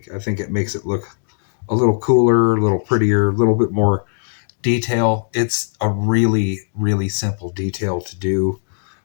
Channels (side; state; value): right; silent; digital silence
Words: I think it makes it look a little cooler, a little prettier, a little bit more detail. It's a really, really simple detail to do.